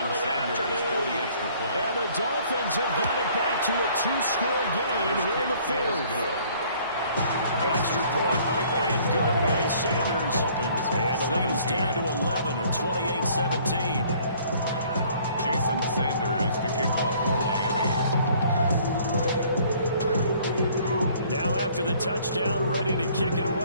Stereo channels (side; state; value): both; inverted; correlation -0.58